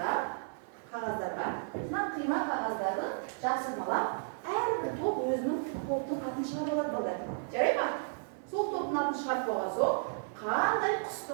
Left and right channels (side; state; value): left; silent; 56 dB below the other